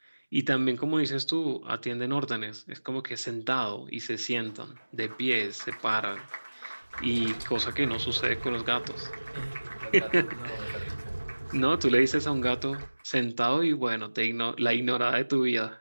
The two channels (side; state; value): both; inverted; correlation -1.00